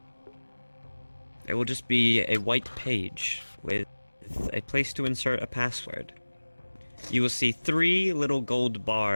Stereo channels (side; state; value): both; inverted; correlation -1.00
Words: it will just be a white page with a place to insert a password. You will see 3 little gold